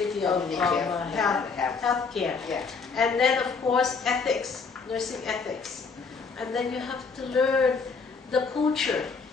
of healthcare. Yeah. And then of course ethics, nursing ethics. And then you have to learn the culture.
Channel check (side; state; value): right; quieter; 4.9 dB